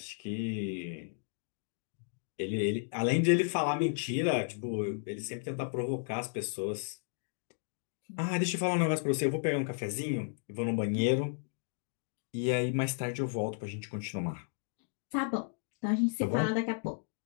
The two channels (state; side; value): silent; right; digital silence